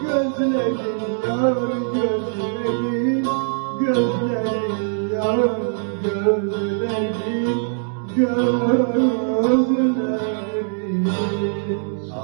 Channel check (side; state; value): left; silent; digital silence